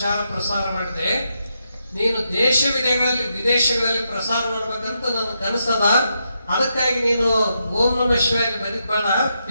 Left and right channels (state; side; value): inverted; both; correlation -0.83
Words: ಪ್ರಸಾರ ಮಾಡಿದೆ. ನೀನು ವಿದೇಶಗಳಲ್ಲಿ ಪ್ರಸಾರ ಮಾಡ್ಬೇಕಂತ ನನ್ನ ಕನಸದ. ಅದಕ್ಕಾಗಿ ನೀನು ಓಂ ನಮಃ ಶಿವಾಯ ಬರೀದ್ ಬೇಡ,